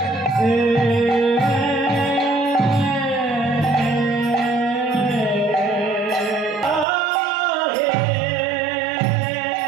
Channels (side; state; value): left; drops out; at 6.9 s